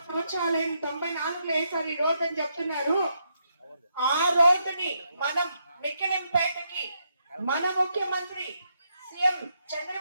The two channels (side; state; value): both; inverted; correlation -0.79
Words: సంవత్సరాలైంది, 94లో వేసారు ఈ రోడ్డు అని చెప్తున్నారు. ఆ రోడ్డుని మనం మిక్కిలింపేటకి మన ముఖ్యమంత్రి సీఎం